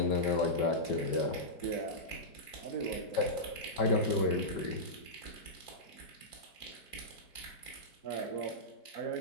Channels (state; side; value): late; right; 5.2 ms